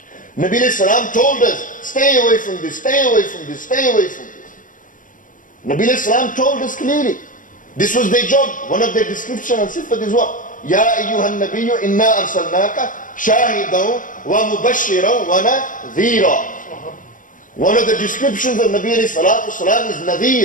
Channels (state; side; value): late; right; 0.38 ms